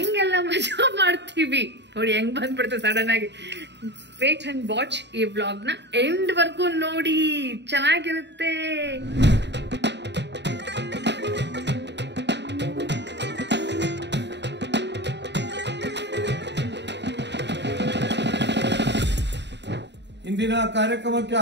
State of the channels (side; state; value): left; late; 0.51 ms